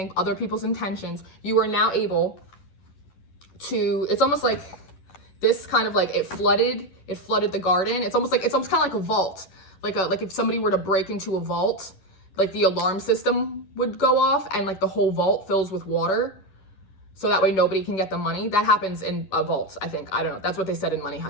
other people's intentions, you are now able to, it's almost like this kind of like it flooded the garden. It's almost kind of like a vault. Like if somebody were to break into a vault, like the alarm system would go off and like the whole vault fills with water. So that way nobody can get the money. That happens in vaults, I think. I don't know. That's what they said in Money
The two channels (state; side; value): late; right; 11 ms